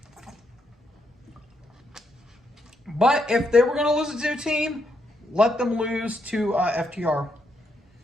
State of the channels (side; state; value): both; normal; correlation 0.78